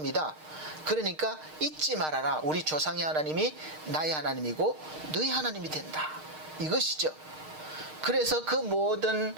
그러니까 잊지 말아라. 우리 조상의 하나님이 나의 하나님이고 너희 하나님이 된다. 이것이죠. 그래서 그 모든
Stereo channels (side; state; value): left; late; 6.5 ms